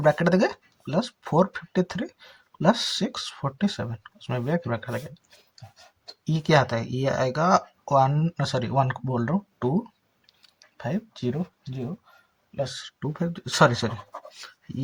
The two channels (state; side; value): identical; both; correlation 1.00